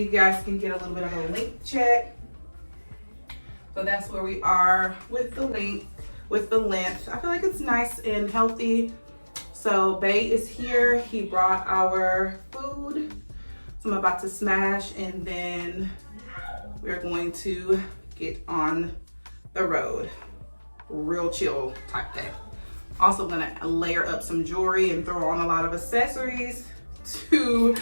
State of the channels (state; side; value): inverted; both; correlation -1.00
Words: guys can get a little bit of a length check. So that's where we are with the length. I feel like it's nice and healthy. So Bay is here. He brought our food. So I'm about to smash, and then we're going to get on the road. real chill type day. Also gonna layer up some jewelry and throw on a lot of accessories to